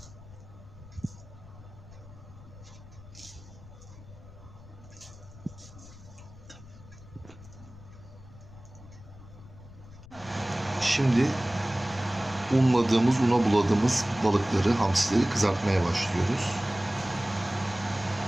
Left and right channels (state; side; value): noise; left; rumble, 19 dB below the sound